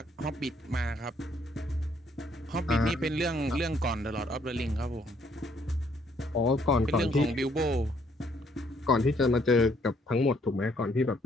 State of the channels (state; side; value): normal; both; correlation 0.67